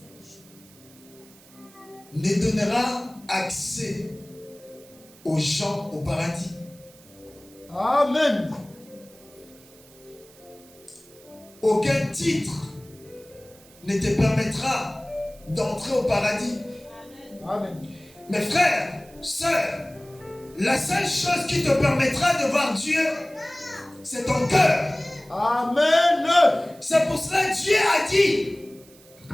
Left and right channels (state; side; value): noise; right; hiss, 25 dB below the sound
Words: ne donnera accès aux gens au paradis. Amen. Aucun titre ne te permettra d'entrer au paradis. Amen. Mes frères, sœurs, la seule chose qui te permettra de voir Dieu, c'est ton cœur. Amen. C'est pour cela que Dieu a dit,